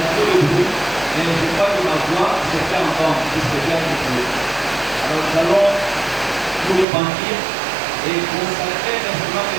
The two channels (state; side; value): drops out; left; at 6.9 s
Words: de bruit, mais je crois que ma voix se fait entendre, puisque j'ai un peu. Alors nous allons nous repentir et consacrer l'instrument